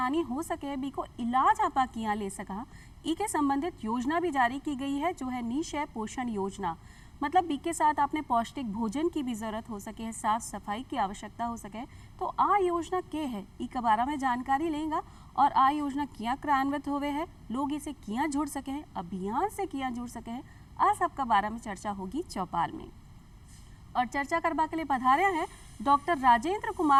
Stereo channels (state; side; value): identical; both; correlation 1.00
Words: हो सके, बी को इलाज आपा किया ले सका, ई के संबंधित योजना भी जारी की गई है, जो है निशय पोषण योजना। मतलब बी के साथ आपने पौष्टिक भोजन की भी जरूरत हो सके, साफ सफाई की आवश्यकता हो सके। तो आ योजना के है, ई के बारे में जानकारी लेंगे और आ योजना किया क्रियान्वित होवे है, लोग इसे किया जुड़ सके हैं, अभियान से किया जुड़ सके हैं, आ सबका बारे में चर्चा होगी चौपाल में। और चर्चा करवा के लिए पधारे हैं डॉक्टर राजेंद्र